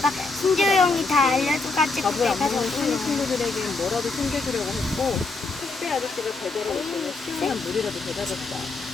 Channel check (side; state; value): right; quieter; 3.8 dB